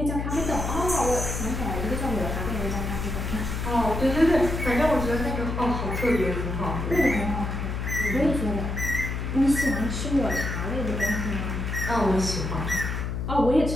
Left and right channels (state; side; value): noise; left; hum, 3 dB below the sound